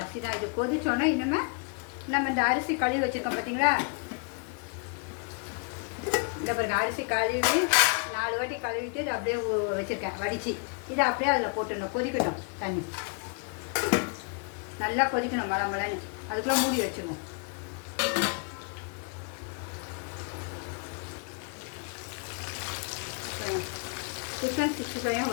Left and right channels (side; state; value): right; quieter; 36.0 dB